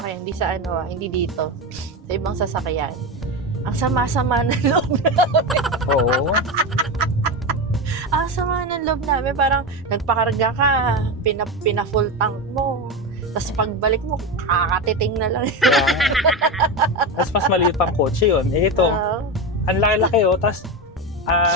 hindi dito. Sa ibang sasakyan. Ang sama-sama ng loob namin. Oo. Ang sama ng loob namin. Parang nagpakarga ka, pina-full tank mo. Tapos pagbalik mo, kakatiting na lang. Tapos mas maliit pang kotse yun. Eh ito, ang laki-laki Tapos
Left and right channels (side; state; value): both; normal; correlation 0.17